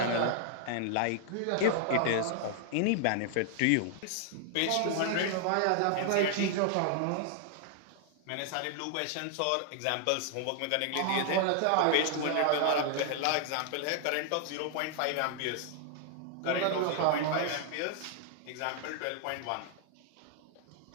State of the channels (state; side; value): different; both; correlation 0.00